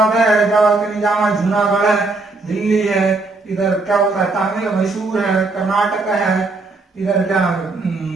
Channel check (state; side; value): quieter; left; 3.5 dB